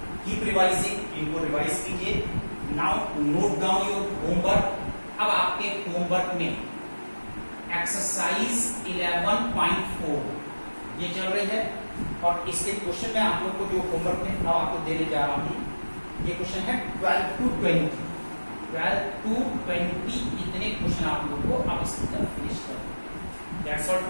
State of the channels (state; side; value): inverted; both; correlation -1.00